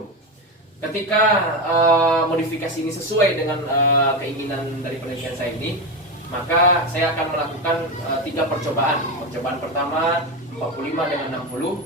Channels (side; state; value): both; normal; correlation 0.15